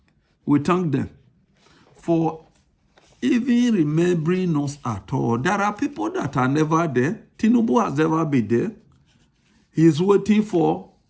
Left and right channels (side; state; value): both; identical; correlation 1.00